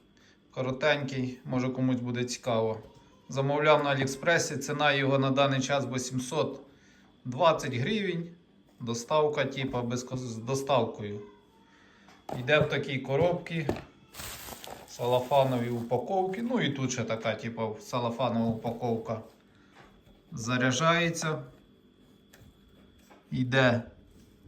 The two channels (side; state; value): both; identical; correlation 1.00